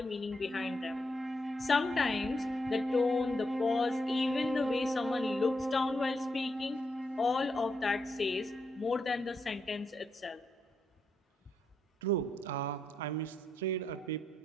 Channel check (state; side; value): normal; both; correlation 0.81